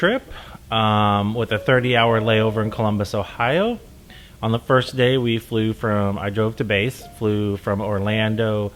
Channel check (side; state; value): both; identical; correlation 1.00